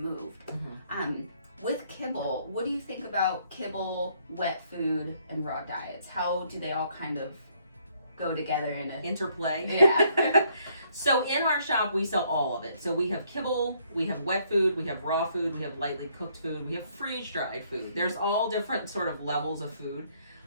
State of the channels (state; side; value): inverted; both; correlation -0.68